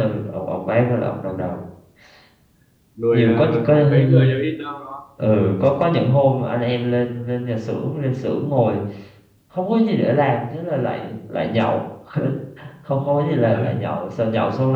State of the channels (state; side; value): identical; both; correlation 1.00